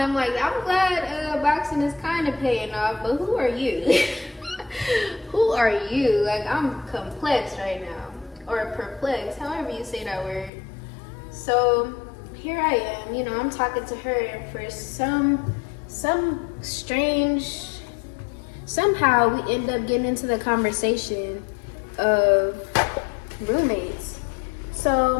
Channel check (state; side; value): drops out; right; at 10.5 s